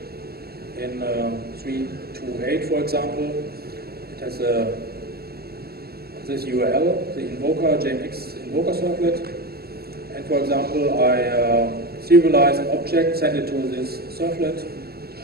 in 328, for example. It has this URL, the invoker, JMX invoker servlet. And for example, I serialize an object, send it to this servlet,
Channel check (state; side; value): late; left; 0.46 ms